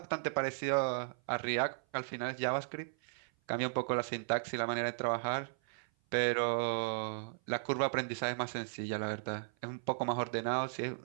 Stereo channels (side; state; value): left; silent; 54 dB below the other